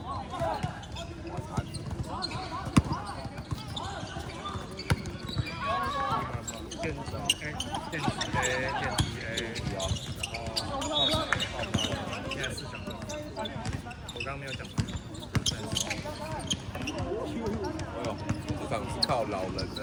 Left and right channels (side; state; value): both; identical; correlation 1.00